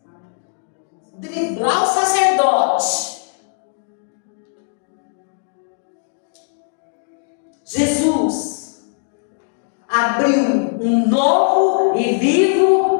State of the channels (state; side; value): silent; right; digital silence